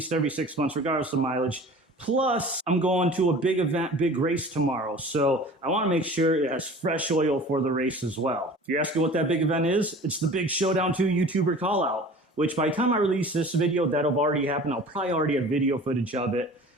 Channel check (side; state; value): both; normal; correlation 0.43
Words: every 6 months regardless of mileage. Plus, I'm going to a big event, big race tomorrow, so I want to make sure it has fresh oil for the race as well. If you're asking what that big event is, it's the Big Showdown 2 YouTuber call out, which by the time I release this video, that'll have already happened. I'll probably already have video footage of it.